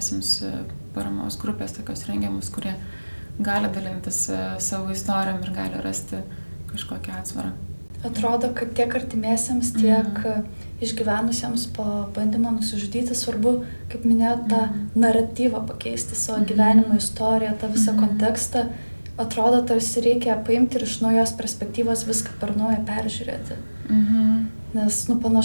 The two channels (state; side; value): inverted; both; correlation -1.00